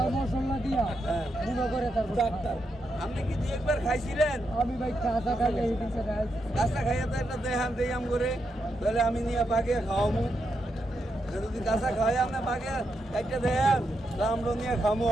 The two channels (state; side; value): normal; both; correlation 0.83